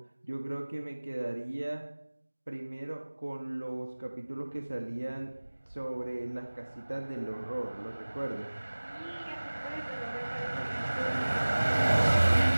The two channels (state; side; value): inverted; both; correlation -1.00